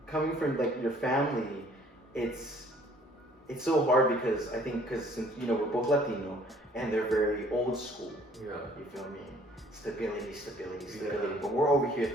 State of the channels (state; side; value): normal; both; correlation 0.57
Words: coming from like your family, it's so hard because I think since you know we're both Latino and they're very old school. Yeah. You feel me? Stability. Yeah. But we're over here